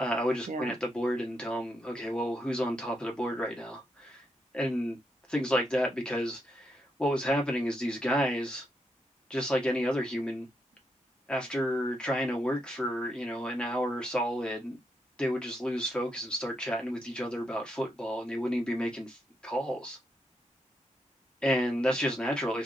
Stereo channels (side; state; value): both; normal; correlation 0.80